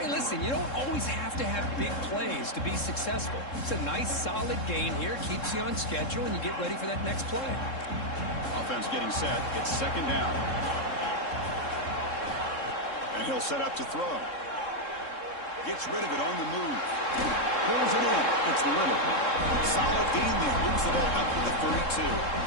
listen, you don't always have to have big plays to be successful. It's a nice, solid gain here. Keeps you on schedule, and you get ready for that next play. Offense getting set. It's 2nd down. And he'll set up to throw. Gets rid of it on the move. Pulls it in. It's Little. Solid gain there. Moves the ball up to the 32.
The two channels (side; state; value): right; late; 3.7 ms